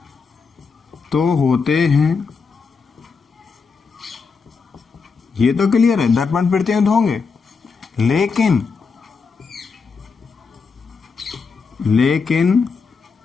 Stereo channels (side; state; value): right; quieter; 5.1 dB